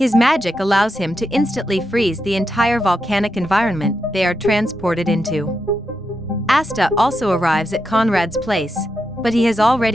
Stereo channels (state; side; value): normal; both; correlation 0.85